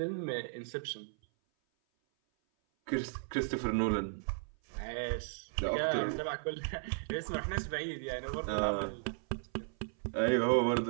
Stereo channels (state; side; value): silent; left; 54 dB below the other